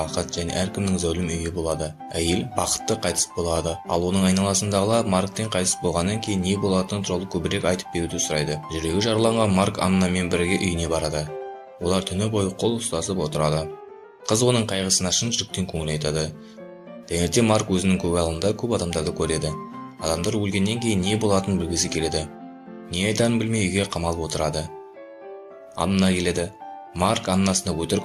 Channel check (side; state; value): both; identical; correlation 1.00